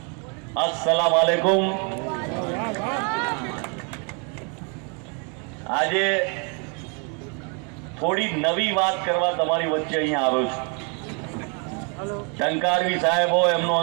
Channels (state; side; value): quieter; left; 35.8 dB